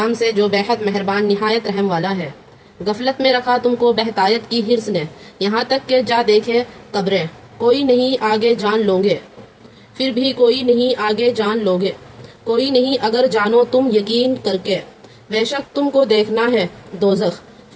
سے جو بےحد مہربان نہایت رحم والا ہے۔ غفلت میں رکھا تم کو بہتایت کی حرص نے، یہاں تک کہ جا دیکھے قبریں، کوئی نہیں آگے جان لوگے، پھر بھی کوئی نہیں آگے جان لوگے، کوئی نہیں اگر جانو تم یقین کر کے، بے شک تم کو دیکھنا ہے دوزخ،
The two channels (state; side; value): identical; both; correlation 1.00